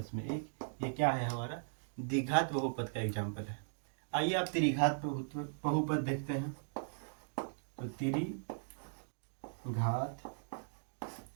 में 1, ये क्या है? हमारा द्विघात बहुपद का एग्जाम्पल है। आइए आप त्रिघात बहुपद देखते हैं। तो त्रिघात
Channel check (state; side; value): silent; left; digital silence